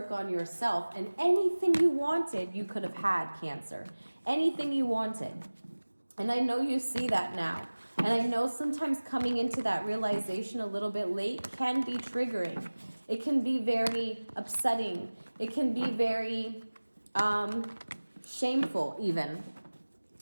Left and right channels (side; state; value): both; inverted; correlation -1.00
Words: on yourself, and anything you wanted, you could have had, Cancer. Anything you wanted. And I know you see that now. And I know sometimes coming into that realization a little bit late can be triggering. It can be very upsetting. It can be very shameful even.